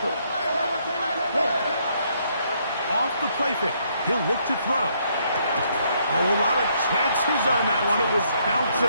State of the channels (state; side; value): inverted; both; correlation -0.71